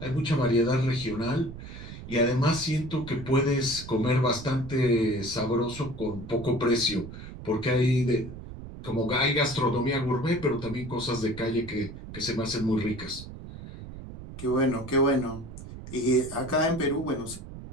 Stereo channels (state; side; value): noise; right; rumble, 12 dB below the sound